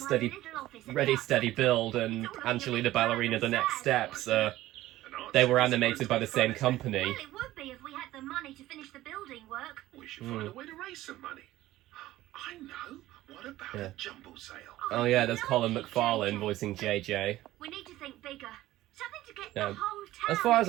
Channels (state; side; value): quieter; left; 15.7 dB